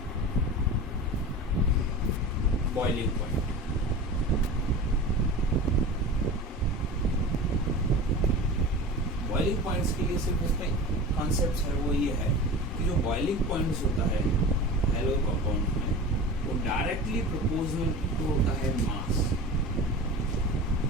बॉइलिंग पॉइंट। बॉइलिंग पॉइंट्स के लिए सिर्फ इसमें कॉन्सेप्ट है वो ये है कि जो बॉइलिंग पॉइंट्स होता है हेलो कंपाउंड में वो डायरेक्टली प्रोपोर्शनल टू होता है mass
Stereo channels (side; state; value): both; normal; correlation 0.33